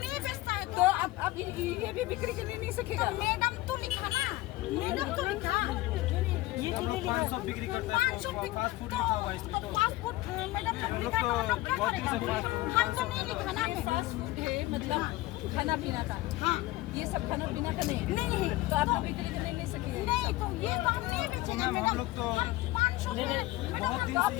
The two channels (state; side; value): quieter; right; 18.4 dB